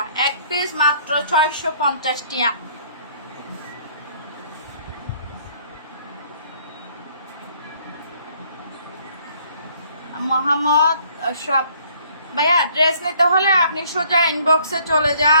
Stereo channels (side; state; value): both; inverted; correlation -0.60